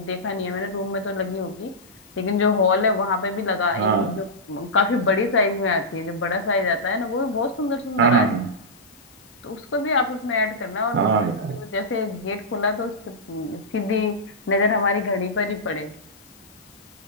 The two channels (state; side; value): noise; left; hiss, 26 dB below the sound